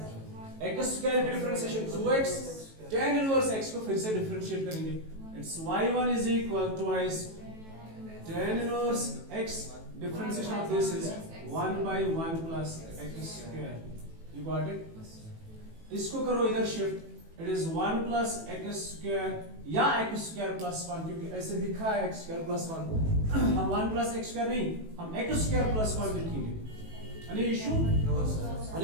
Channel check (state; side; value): late; left; 18 ms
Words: x स्क्वायर की differentiation 2x, tan inverse x को फिर से डिफरेंशिएट करेंगे। It's y1 is equal to twice tan inverse x, differentiation of this is 1/1 plus x square। You got it? इसको करो इधर shift, it is 1 plus x square या x square plus 1, क्योंकि ऐसे लिखा है x square plus 1। हम 1 plus x square नहीं, हम x square plus 1 लिखेंगे। Any issue? No sir।